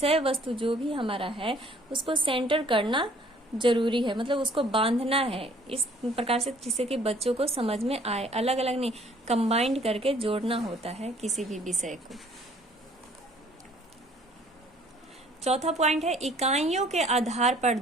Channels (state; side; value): normal; both; correlation 0.58